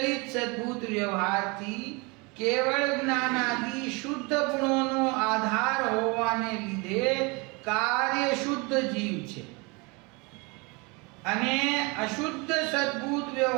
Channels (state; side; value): quieter; left; 28.1 dB